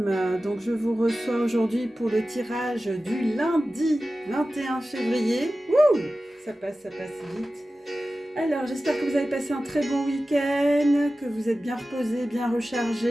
Donc je vous reçois aujourd'hui pour le tirage du lundi 21 février. Wouh, ça passe vite. Alors j'espère que vous avez passé un très bon week-end, que vous êtes bien reposés, bien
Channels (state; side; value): normal; both; correlation 0.95